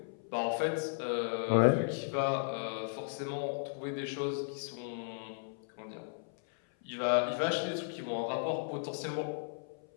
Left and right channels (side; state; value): right; silent; 54 dB below the other